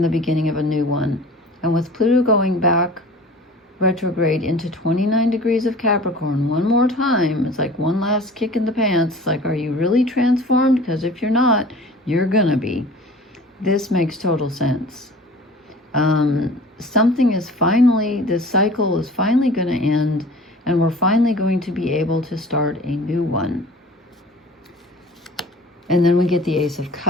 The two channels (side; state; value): both; normal; correlation 0.43